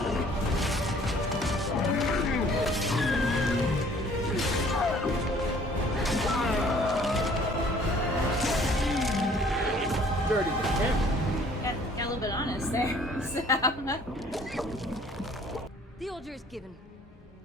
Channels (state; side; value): normal; both; correlation 0.56